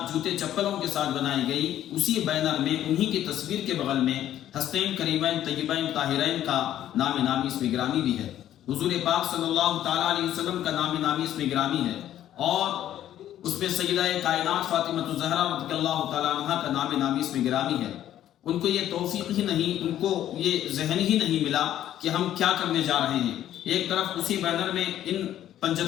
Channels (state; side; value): quieter; right; 11.9 dB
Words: جوتے چپلوں کے ساتھ بنائی گئی، اسی بینر میں انہی کی تصویر کے بغل میں ہستین کریمین طیبین طاہرین کا نام نامی اس میں گرامی بھی ہے، حضور پاک صلی اللہ تعالیٰ علیہ وسلم کا نام نامی اس میں گرامی ہے، اور اس پہ سیدہ کائنات فاطمہ الزہرا رضی اللہ تعالیٰ عنہ کا نام نامی اس میں گرامی ہے۔ ان کو یہ توفیق ہی نہیں، ان کو یہ ذہن ہی نہیں ملا کہ ہم کیا کرنے جا رہے ہیں۔ ایک طرف اسی بینر میں ان